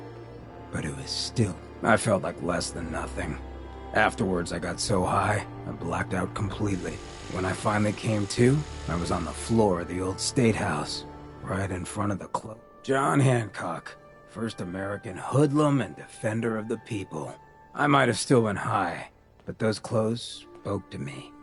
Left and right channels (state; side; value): identical; both; correlation 1.00